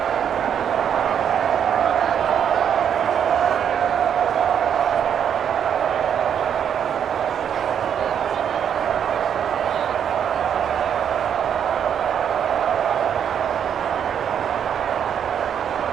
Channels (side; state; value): left; quieter; 8.5 dB